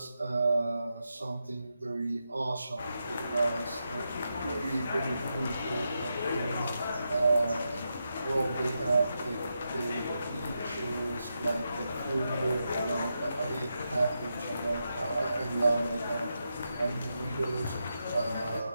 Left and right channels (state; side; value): inverted; both; correlation -0.86